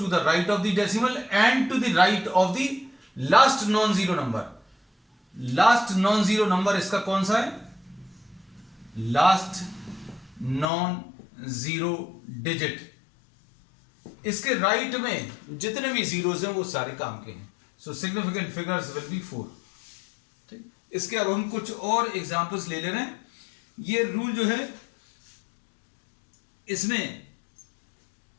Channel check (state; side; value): drops out; right; at 10.7 s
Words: the right of the decimal and to the right of the last non zero number. Last non zero number इसका कौन सा है, लास्ट नॉन जीरो डिजिट, इसके राइट में जितने भी जीरोस हैं वो सारे काम के हैं। सो सिग्निफिकेंट फिगर्स विल बी 4। ठीक, इसके अब हम कुछ और एग्जांपल्स ले ले रहे हैं। ये रूल जो है इसमें